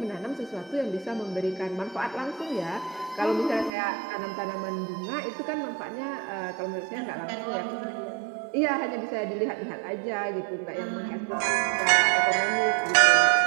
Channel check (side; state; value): left; drops out; at 3.7 s